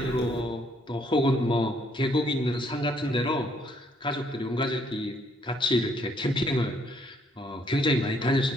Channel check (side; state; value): both; normal; correlation 0.68